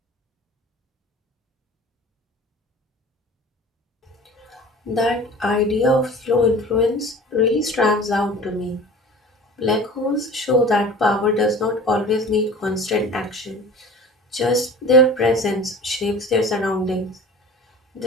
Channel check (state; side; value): normal; both; correlation 0.40